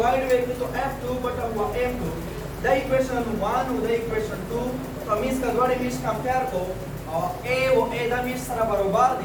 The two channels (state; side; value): identical; both; correlation 1.00